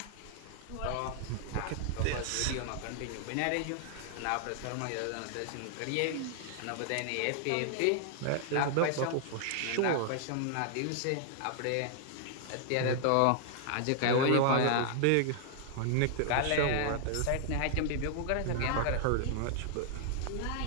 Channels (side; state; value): both; different; correlation -0.01